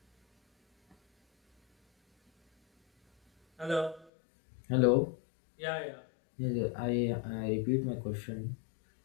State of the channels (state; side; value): drops out; right; at 4.1 s